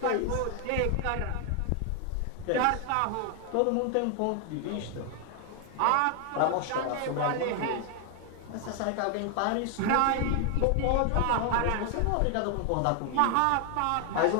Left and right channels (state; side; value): different; both; correlation 0.00